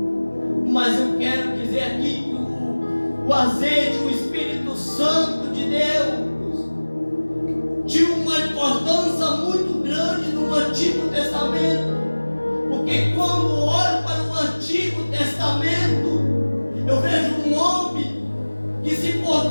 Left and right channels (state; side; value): inverted; both; correlation -1.00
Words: Mas eu quero dizer aqui que o azeite, o Espírito Santo de Deus, tinha uma importância muito grande no Antigo Testamento, porque quando olho para o Antigo Testamento, eu vejo um homem que se